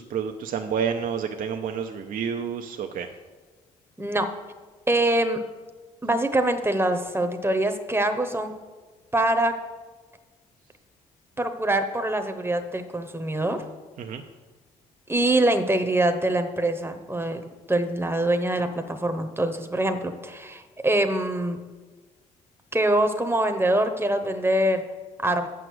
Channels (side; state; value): both; normal; correlation 0.68